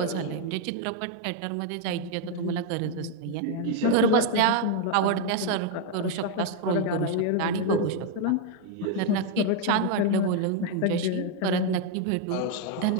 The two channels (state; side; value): different; both; correlation 0.00